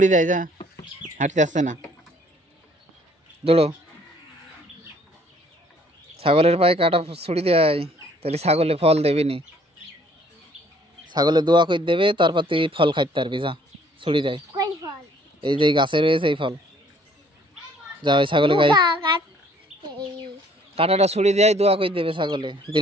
দেয় যা, হাঁটতে আসছে না, দৌড়ো। ছাগলের পায়ে কাটা ছড়ি দেয়, তাহলে ছাগলে ফল দেবে নি, ছাগলে দোয়া করে দেবে, তারপর তুই ফল খাইতে পারবি। যা ছড়ি দেয়, এই যে গাছে রয়েছে এই ফল, যা ওই ছাগলে গাই কাঁটাটা ছুরি দিয়ে দোয়া করে দেবে ছাগলে,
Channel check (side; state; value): both; normal; correlation 0.60